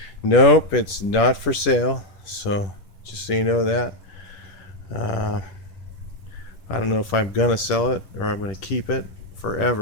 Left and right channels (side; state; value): right; late; 10 ms